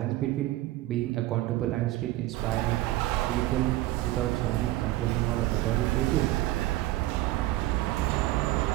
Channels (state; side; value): quieter; left; 16.8 dB